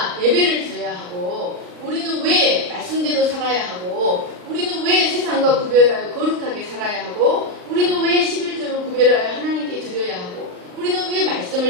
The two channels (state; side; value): late; left; 39 ms